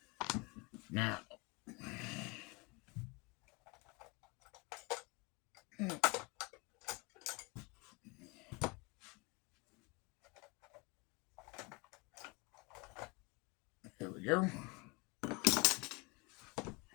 Now, here we go.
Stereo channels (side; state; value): right; quieter; 28.3 dB